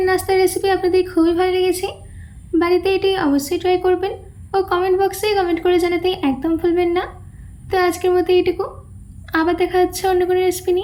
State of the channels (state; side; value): identical; both; correlation 1.00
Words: নাস্তার রেসিপি আপনাদের খুবই ভালো লেগেছে। বাড়িতে এটি অবশ্যই ট্রাই করবেন ও কমেন্ট বক্সে কমেন্ট করে জানাতে একদম ভুলবেন না। তো আজকের মতো এইটুকু, আবার দেখা হচ্ছে অন্য কোনো রেসিপি